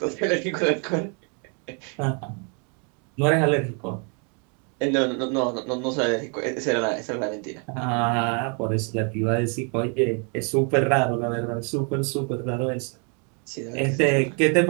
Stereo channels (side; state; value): left; quieter; 38.1 dB